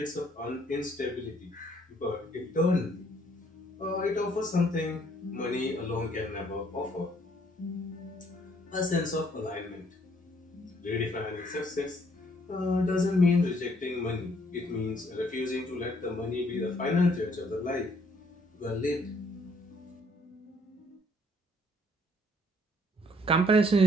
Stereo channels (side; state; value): both; normal; correlation 0.64